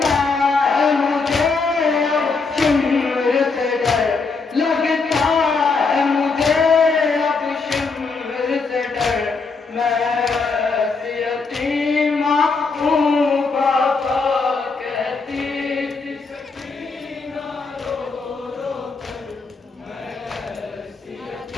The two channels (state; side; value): quieter; right; 4.4 dB